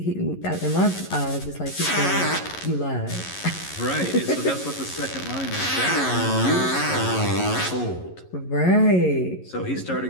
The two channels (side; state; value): right; late; 11 ms